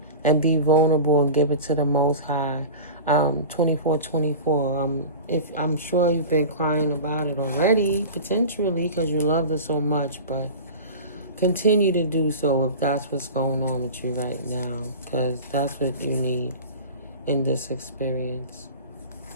and be vulnerable and give it to the Most High. 24/24. If I'm sure you've been crying about it already, potentially, because you love it so much, but continue to do so if that's what's going on with you right now, because that's what you need in this experience.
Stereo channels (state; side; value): inverted; both; correlation -0.33